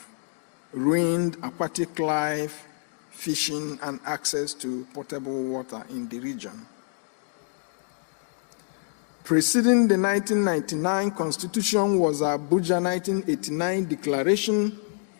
ruined aquatic life, fishing, and access to potable water in the region. Preceding the 1999 Constitution was Abuja 1989 Declaration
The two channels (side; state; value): right; silent; 60 dB below the other